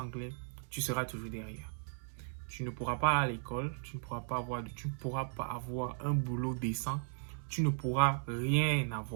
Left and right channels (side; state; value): left; silent; digital silence